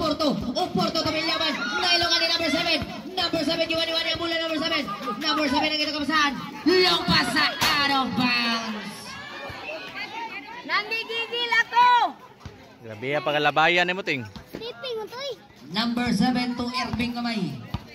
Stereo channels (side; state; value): both; identical; correlation 1.00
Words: Oporto to Vilyaman. Nailokan ni number 7. Number 7 iwan-iwan yung mula number 7. Number 7 ang kita kapasahan. Lumpas sa out of bounds. Nanggigigil ako! Grabe ya pagalabayan ni mo ting. Sleeping mo to eh. Number 7 to Erben Kamay.